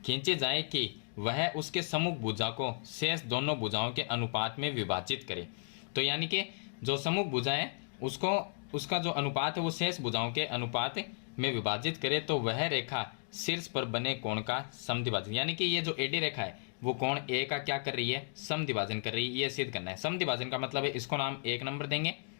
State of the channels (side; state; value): right; silent; digital silence